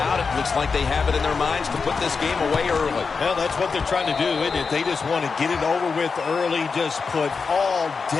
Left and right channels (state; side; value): quieter; right; 5.0 dB